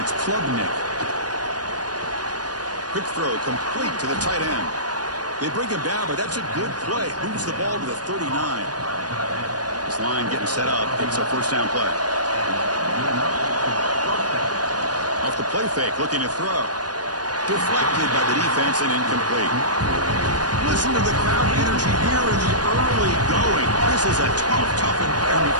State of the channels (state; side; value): late; left; 0.69 ms